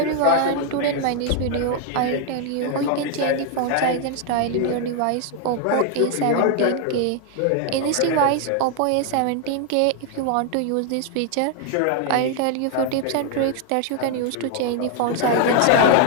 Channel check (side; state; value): both; different; correlation 0.00